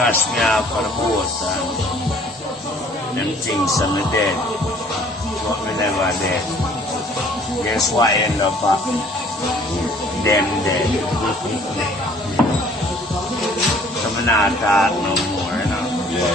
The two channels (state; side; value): normal; both; correlation 0.56